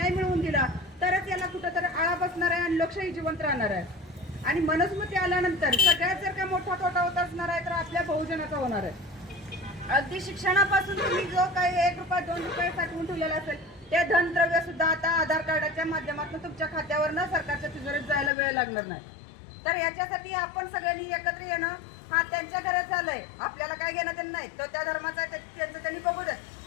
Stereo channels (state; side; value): drops out; right; at 18.3 s